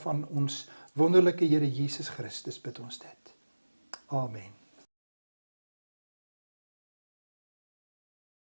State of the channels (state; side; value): inverted; both; correlation -1.00